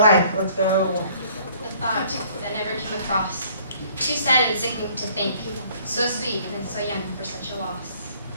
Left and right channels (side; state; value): both; inverted; correlation -0.58